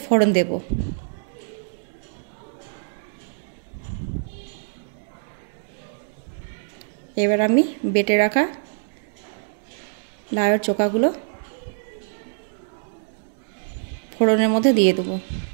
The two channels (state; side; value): silent; left; digital silence